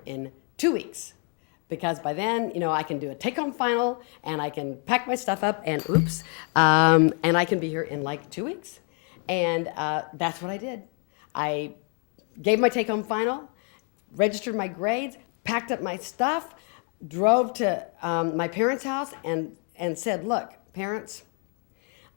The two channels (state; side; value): quieter; right; 38.5 dB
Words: in 2 weeks. Because by then, I can do a take-home final, and I can pack my stuff up, and and I can be here in like 2 weeks." And that's what I did. I gave my take-home final, registered my grades, packed up my stuff, drove to my parents' house, and said, "Look, parents,